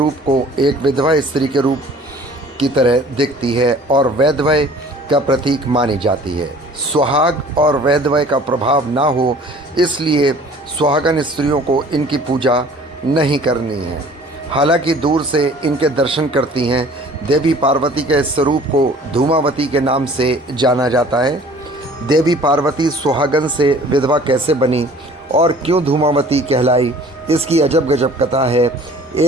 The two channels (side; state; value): both; normal; correlation 0.50